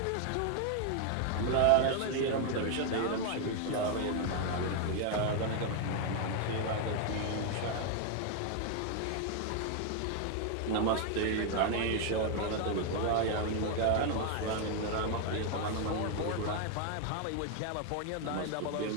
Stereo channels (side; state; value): both; different; correlation 0.00